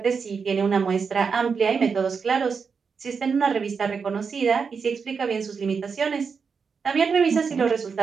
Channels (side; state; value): left; quieter; 5.7 dB